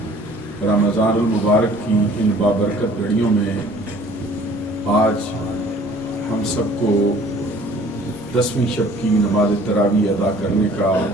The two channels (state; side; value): normal; both; correlation 0.52